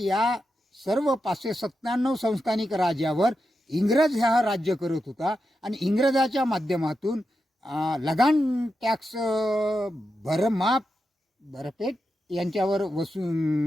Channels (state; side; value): normal; both; correlation 0.88